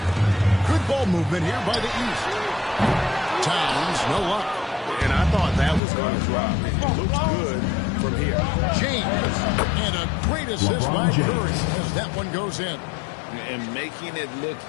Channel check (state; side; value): drops out; right; at 5.8 s